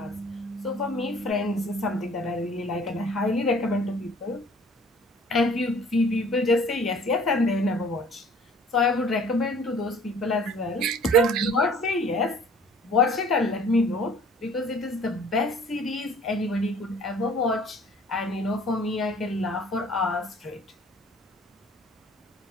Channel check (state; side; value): normal; both; correlation 0.52